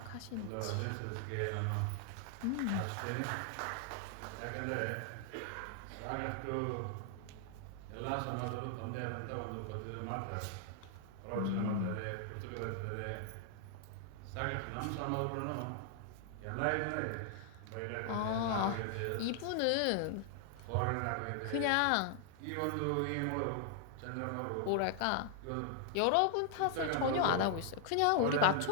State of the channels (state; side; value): different; both; correlation 0.00